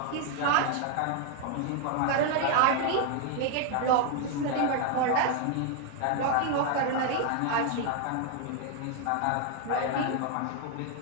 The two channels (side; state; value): both; different; correlation 0.00